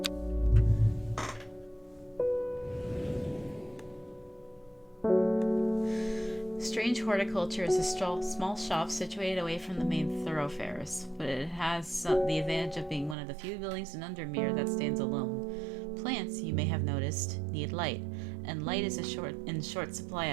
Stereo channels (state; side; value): drops out; left; at 13.2 s